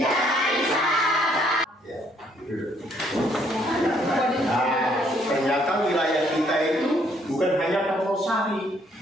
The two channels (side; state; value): both; normal; correlation 0.67